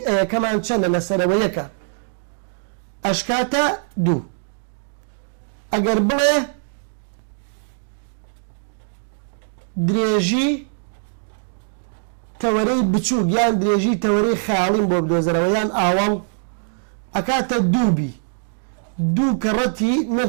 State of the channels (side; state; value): left; silent; digital silence